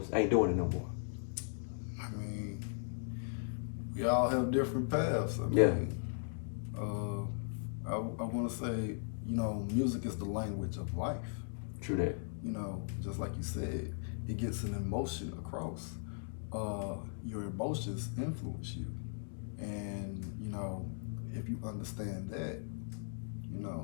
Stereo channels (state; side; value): silent; right; digital silence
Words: ain't doing it no more. I mean, we all have different paths. I mean, I want to say, you know, music is the language of life. True that. You know, just like you said, it gets an emotion across. Your emotions influence you, and you know, if you understand that, you